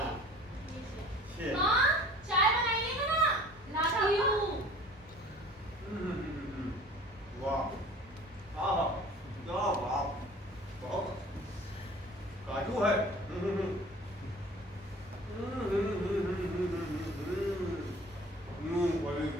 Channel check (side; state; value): both; normal; correlation 0.46